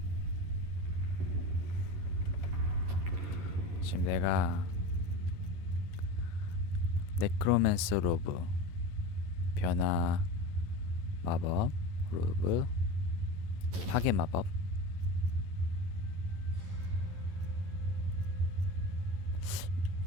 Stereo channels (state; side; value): late; left; 11 ms